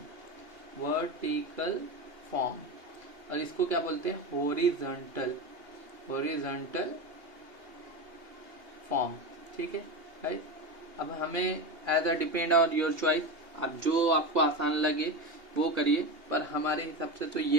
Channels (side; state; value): left; late; 2.8 ms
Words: और इसको क्या बोलते हैं हॉरिजॉन्टल फॉर्म, ठीक है राइट। अब हमें as a depend on your choice, अब जो आपको आसान लगे वो करिए, पर हमारे हिसाब से तो